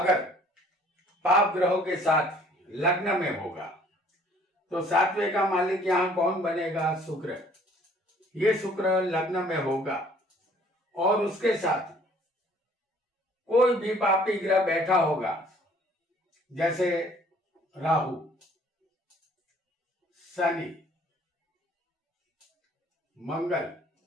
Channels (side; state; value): both; normal; correlation 0.57